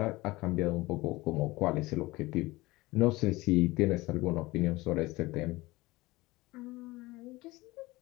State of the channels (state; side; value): quieter; right; 20.6 dB